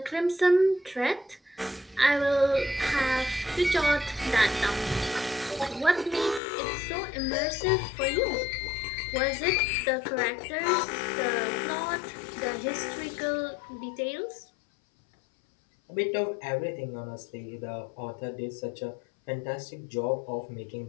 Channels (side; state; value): right; drops out; at 6.4 s